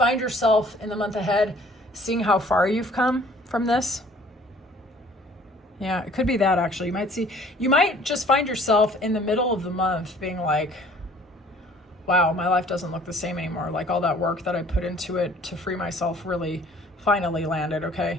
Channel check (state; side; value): normal; both; correlation 0.55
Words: yourself in the month ahead seeing how far you've come from this. Yeah, it could be that actually. You might just find yourself in the middle of the month being like, wow, my life doesn't look the same anymore. Like all that work that I put into it to free myself really finally landed,